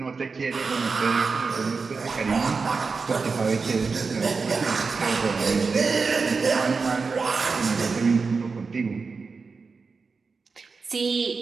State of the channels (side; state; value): left; quieter; 4.6 dB